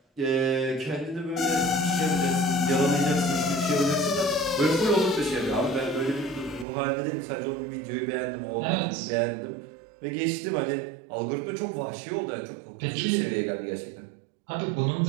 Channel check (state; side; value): drops out; left; at 6.7 s